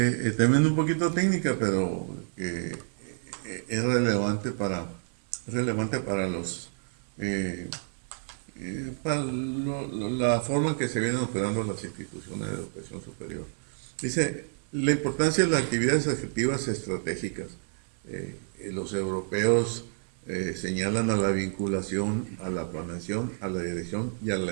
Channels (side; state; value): left; silent; digital silence